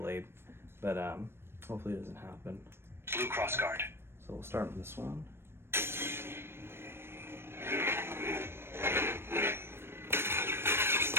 But hopefully it doesn't happen. Blue crossguard. So we'll start with this one.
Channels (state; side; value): late; left; 0.12 ms